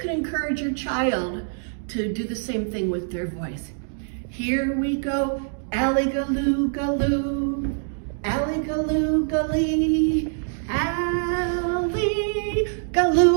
can encourage your child to do the same thing with their voice. Here we go, alley-galoo, galoo, alley-galoo, gully, alley,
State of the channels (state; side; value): silent; left; digital silence